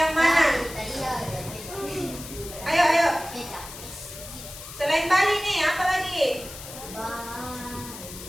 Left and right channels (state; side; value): noise; left; hiss, 13 dB below the sound